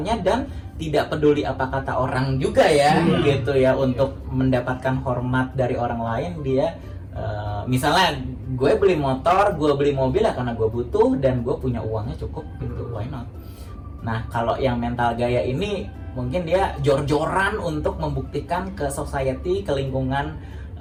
dan tidak peduli apa kata orang juga ya, gitu ya, untuk mendapatkan hormat dari orang lain. Dia misalnya gue beli motor, gue beli mobil ya karena gue butuh dan gue punya uangnya cukup gitu, why not? Nah kalau yang mental gaya ini mungkin dia jor-joran untuk membuktikan ke society, ke lingkungan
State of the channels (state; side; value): identical; both; correlation 1.00